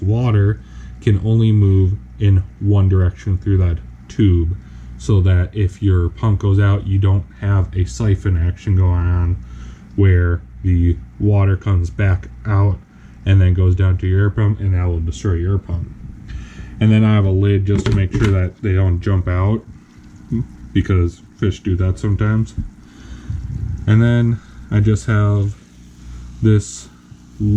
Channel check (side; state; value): both; identical; correlation 1.00